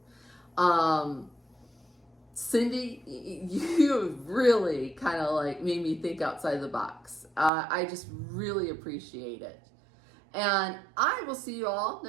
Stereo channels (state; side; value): drops out; left; at 7.5 s